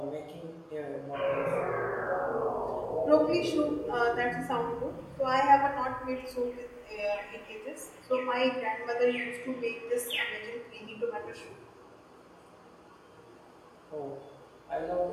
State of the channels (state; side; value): identical; both; correlation 1.00